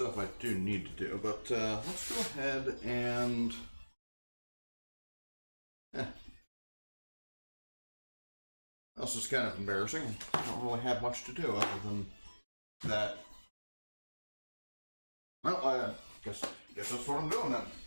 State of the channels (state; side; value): inverted; both; correlation -1.00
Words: I do need to do, but let's go ahead and... This is kind of embarrassing. I don't really have much to do other than that. Well, I guess that's what I'm doing then.